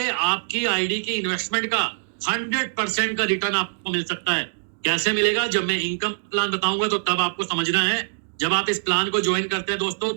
आपकी आईडी की इन्वेस्टमेंट का 100% का रिटर्न आपको मिल सकता है। कैसे मिलेगा, जब मैं इनकम प्लान बताऊंगा तो तब आपको समझना है। जब आप इस प्लान को ज्वाइन करते हैं दोस्तों,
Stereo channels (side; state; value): left; silent; digital silence